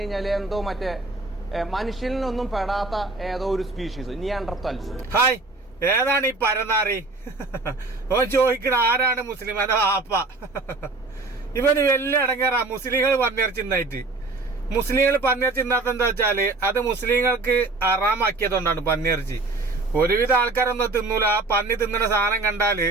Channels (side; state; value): left; quieter; 3.4 dB